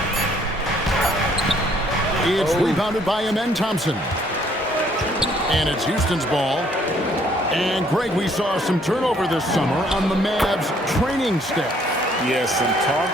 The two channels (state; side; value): normal; both; correlation 0.64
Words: It's rebounded by Amen Thompson. And it's Houston's ball. And, Greg, we saw some turnover this summer on the Mavs training staff. Yes, some